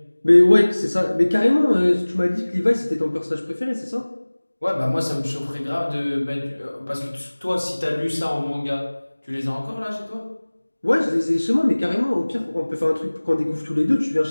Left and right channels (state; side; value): inverted; both; correlation -1.00